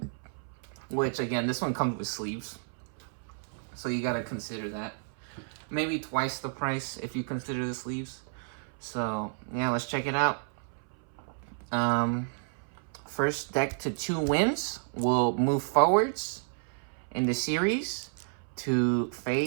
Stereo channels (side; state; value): left; silent; 57 dB below the other